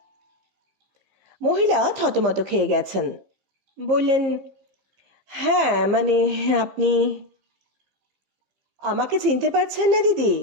মহিলা থতমত খেয়ে গেছেন। বললেন, হ্যাঁ মানে আপনি আমাকে চিনতে পারছেন না দিদি?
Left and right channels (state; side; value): late; left; 15 ms